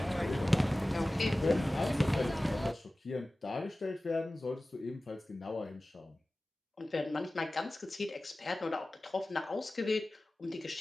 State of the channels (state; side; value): normal; both; correlation 0.97